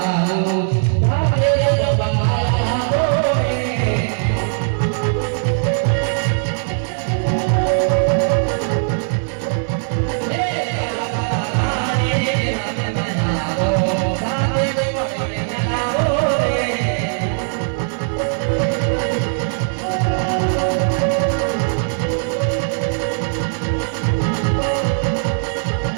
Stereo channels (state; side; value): silent; left; 66 dB below the other